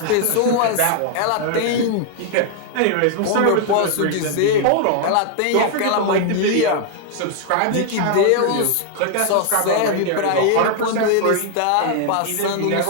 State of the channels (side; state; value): both; different; correlation 0.00